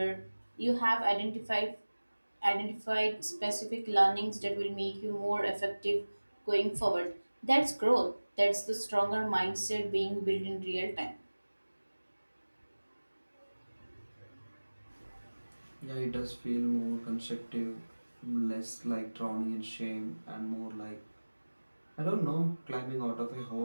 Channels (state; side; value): inverted; both; correlation -1.00